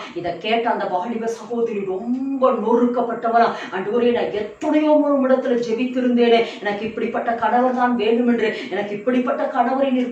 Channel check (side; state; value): both; identical; correlation 1.00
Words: இதை கேட்ட அந்த வாலிப சகோதரி ரொம்ப நொறுக்கப்பட்டவனா, ஆண்டவரே நான் எத்தனையோ இடத்துல ஜெபித்திருந்தேனே, எனக்கு இப்படிப்பட்ட கணவர் தான் வேண்டும் என்று, எனக்கு இப்படிப்பட்ட கணவரை